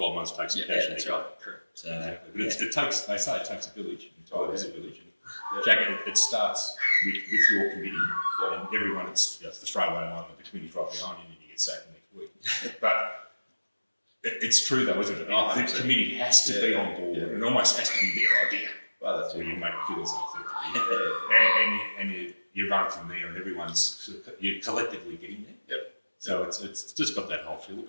months, take some cash. Yeah, that's right. So, exactly. But they say it takes a village. It is a village. Jack, it starts with your committee and everyone. It's the throwaway line that the committee's right behind you and you get sacked the next week. But it's true though, isn't it? The committee has to be on board. It almost has to be their idea. Well, that's where you make it feel as and you run from there and you're collectively getting there. Yep. So it's just got that whole feel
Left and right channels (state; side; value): inverted; both; correlation -1.00